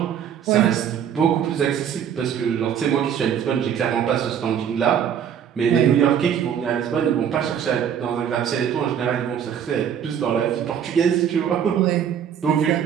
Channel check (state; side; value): quieter; left; 8.7 dB